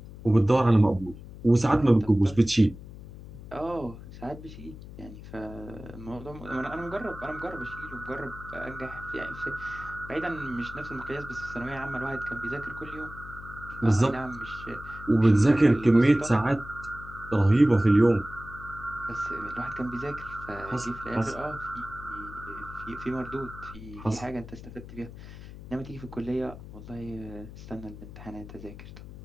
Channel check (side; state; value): left; noise; hum, 14 dB below the sound